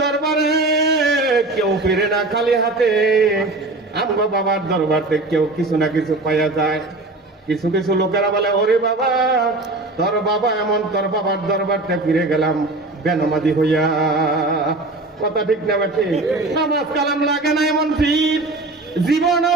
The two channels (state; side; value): quieter; left; 3.0 dB